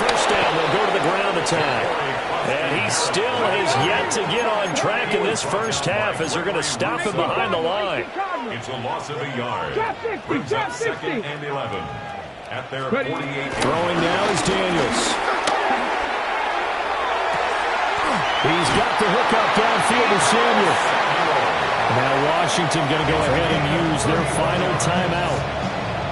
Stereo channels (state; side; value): identical; both; correlation 1.00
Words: down, they'll go to the ground attack. And he still has yet to get on track in this first half as they're going to stop him behind the line. It's a loss of a yard. Brings up 2nd and 11 at their 48. Throwing now is Daniels. He's got the hook up downfield to Samuel. Now Washington going to go ahead and use their final timeout